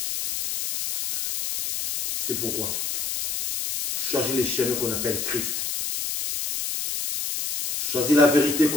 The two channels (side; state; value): left; noise; hiss, 3 dB below the sound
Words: C'est pourquoi choisis les chemins qu'on appelle Christ. Choisis la vérité